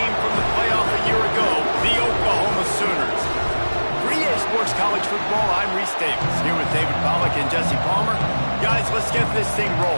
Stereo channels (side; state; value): both; inverted; correlation -1.00